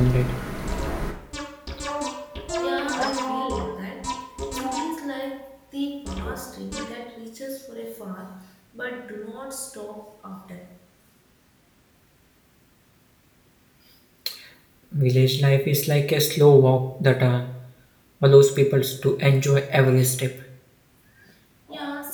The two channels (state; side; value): identical; both; correlation 1.00